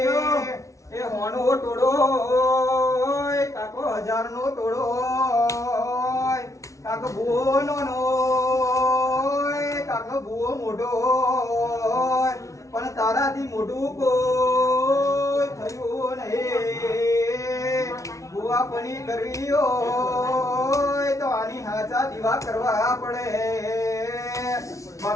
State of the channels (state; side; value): late; right; 0.15 ms